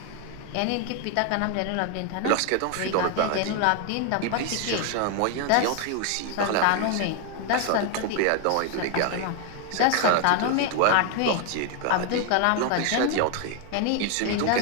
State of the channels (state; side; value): different; both; correlation 0.00